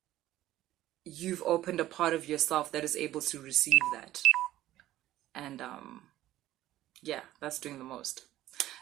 you've opened a part of yourself that is able to receive that. And yeah, that's doing the most.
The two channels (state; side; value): quieter; left; 14.4 dB